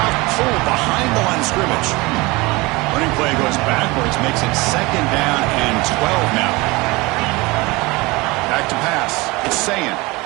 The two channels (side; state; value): left; quieter; 23.4 dB